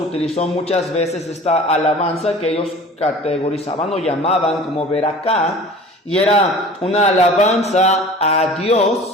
muchas veces esta alabanza que ellos categorizaban o llamaban como beraká, y era una alabanza a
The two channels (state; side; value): normal; both; correlation 0.42